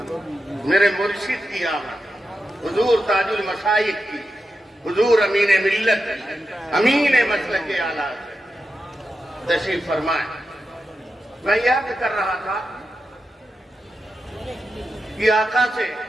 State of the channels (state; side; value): normal; both; correlation 0.89